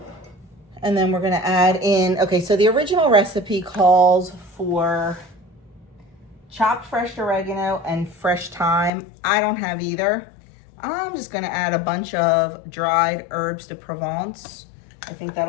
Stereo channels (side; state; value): right; drops out; at 8.9 s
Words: And then we're going to add in, okay, so the original recipe calls for chopped fresh oregano and fresh thyme. I don't have either. I'm just going to add a bunch of dried herbes de Provence. I think